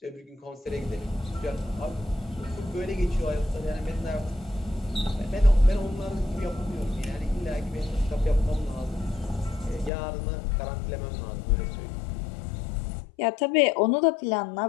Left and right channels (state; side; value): drops out; right; at 9.9 s